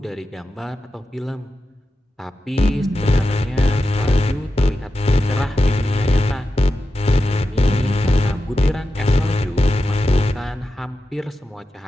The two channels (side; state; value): both; normal; correlation 0.90